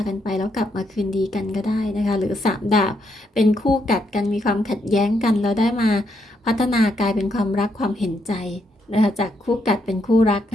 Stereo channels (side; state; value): both; normal; correlation 0.77